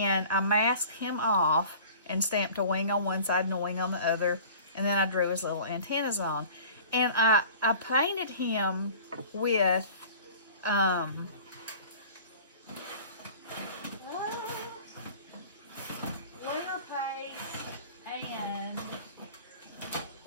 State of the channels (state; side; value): inverted; both; correlation -0.44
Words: I masked him off and stamped a wing on one side and a wing on the other. And then I drew his little antennas on. And I painted him with clear paste and,